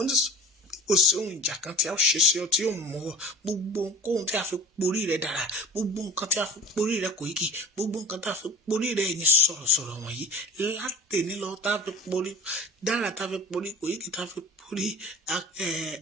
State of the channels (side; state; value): both; normal; correlation 0.39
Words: ti kò sí ohun ìjà kan tí a ṣe sí ọ tí yóò mú ọ gbogbo ohun tí a fi porí rẹ dára gbogbo nǹkan tí a fi porí rẹ Koiki gbogbo nǹkan tí a fi porí rẹ ẹ̀yin sọ̀rọ̀sọ̀rọ̀ wọ̀nyí látẹ̀ní lọ tá a fi porí dára tá a fi porí Koiki tá a fi porí